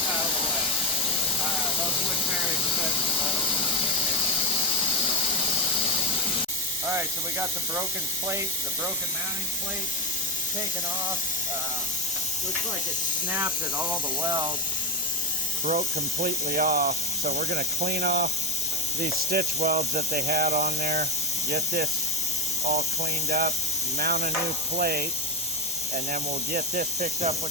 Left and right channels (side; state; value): both; normal; correlation 0.11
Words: Alright, so we got the broken plate, the broken mounting plate taken off. Looks like it snapped at all the welds, broke completely off. So we're going to clean off these stitch welds that they had on there, get this all cleaned up, mount a new plate, and then we'll get this picked up